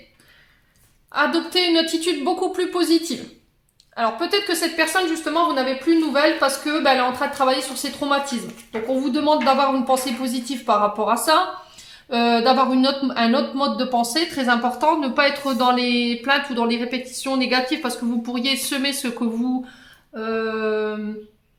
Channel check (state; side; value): identical; both; correlation 1.00